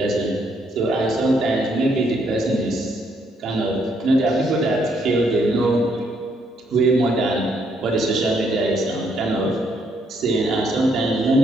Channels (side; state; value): both; normal; correlation 0.72